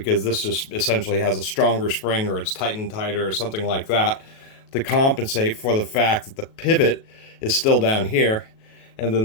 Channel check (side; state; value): right; late; 37 ms